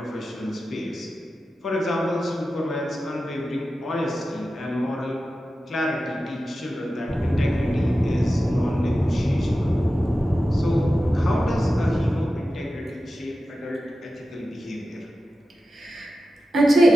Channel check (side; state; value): both; normal; correlation 0.93